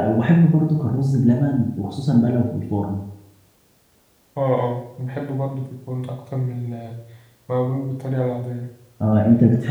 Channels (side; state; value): both; identical; correlation 1.00